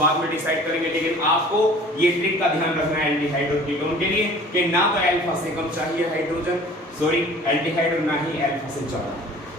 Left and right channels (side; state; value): both; normal; correlation 0.47